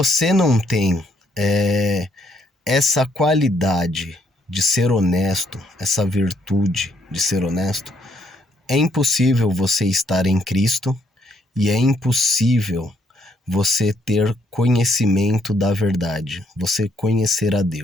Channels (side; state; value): both; normal; correlation 0.70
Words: não tem essa qualidade de ser honesto, essa virtude de ser honesto, é impossível você estar em Cristo e é impossível você ter conhecimento da verdade, você conhecer a